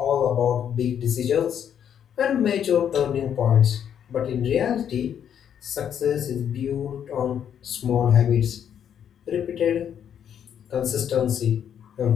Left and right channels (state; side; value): quieter; right; 8.9 dB